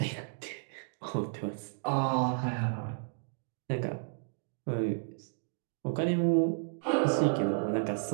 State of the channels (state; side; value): silent; left; digital silence